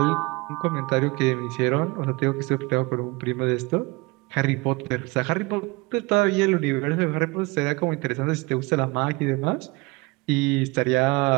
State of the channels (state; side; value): quieter; left; 25.0 dB